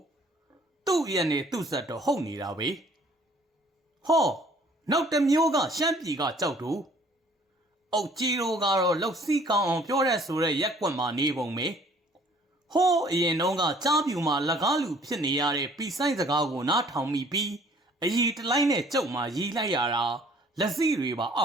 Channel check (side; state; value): both; normal; correlation 0.57